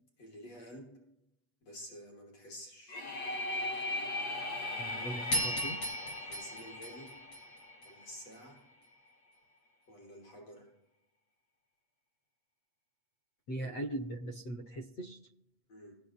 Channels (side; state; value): right; late; 8.2 ms